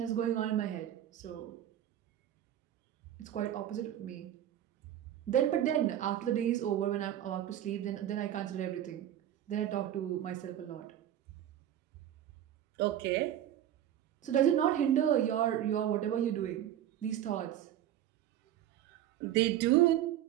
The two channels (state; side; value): quieter; left; 11.5 dB